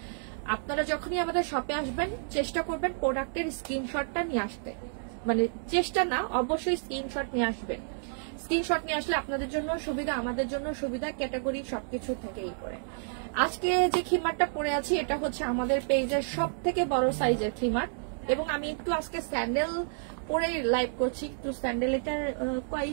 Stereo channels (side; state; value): left; silent; digital silence